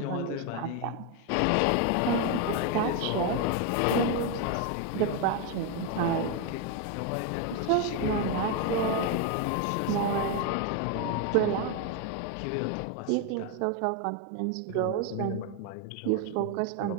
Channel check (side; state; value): both; different; correlation 0.01